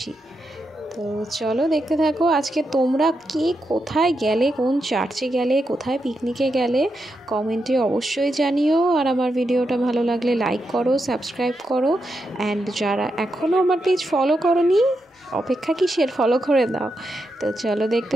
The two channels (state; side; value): normal; both; correlation 0.85